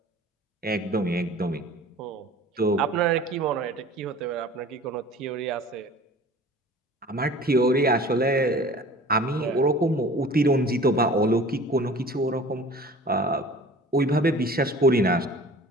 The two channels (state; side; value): normal; both; correlation 0.44